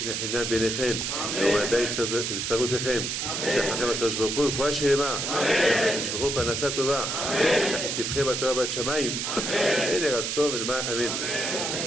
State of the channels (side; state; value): right; noise; hiss, 2 dB below the sound